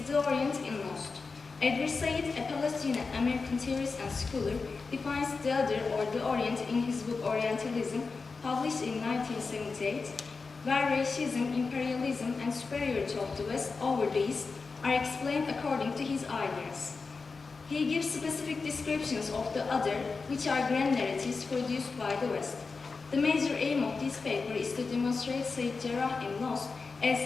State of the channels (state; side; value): quieter; right; 4.4 dB